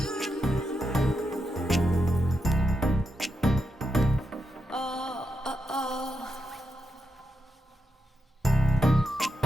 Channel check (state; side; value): normal; both; correlation 0.85